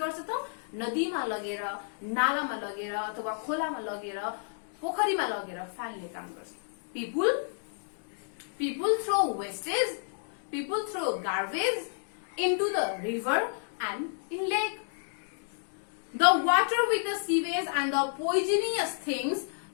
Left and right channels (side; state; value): right; silent; digital silence